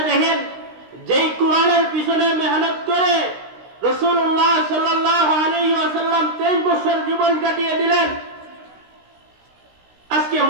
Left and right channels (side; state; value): left; late; 16 ms